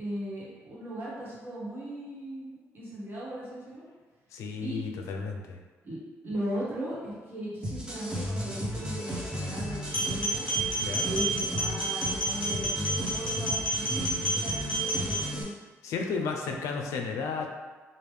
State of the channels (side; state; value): both; normal; correlation 0.38